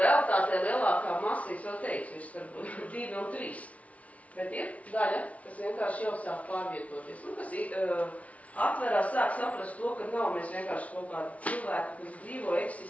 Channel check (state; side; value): late; right; 0.067 ms